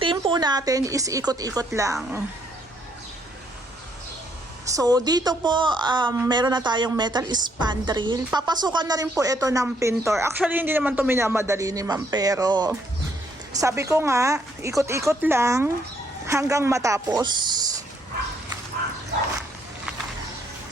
team po natin is ikot-ikot lang. So, dito po, meron na tayong metal spandrel. Papasukan na rin po ito ng pintor. Actually, hindi naman ito minamadali ni ma'am, pero sabi ko nga, ikot-ikot lang hanggang matapos.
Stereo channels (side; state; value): both; normal; correlation 0.70